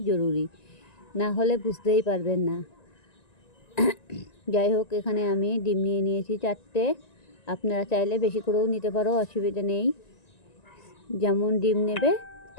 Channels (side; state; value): right; late; 1.9 ms